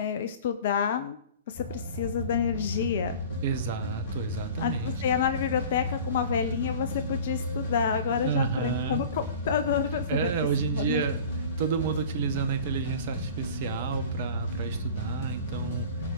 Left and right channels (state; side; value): inverted; both; correlation -0.41